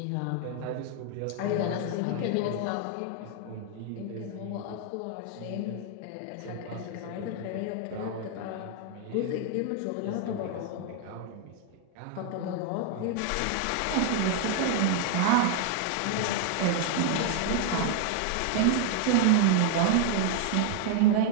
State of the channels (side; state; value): both; different; correlation 0.00